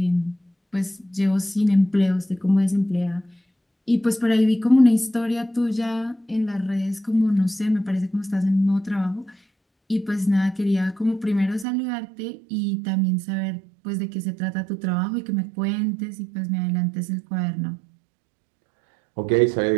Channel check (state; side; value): drops out; left; at 11.7 s